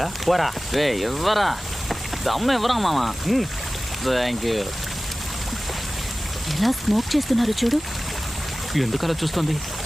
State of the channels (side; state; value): both; normal; correlation 0.96